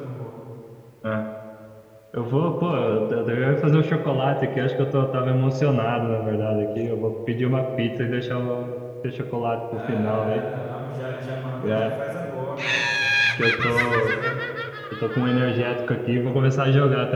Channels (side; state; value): both; identical; correlation 1.00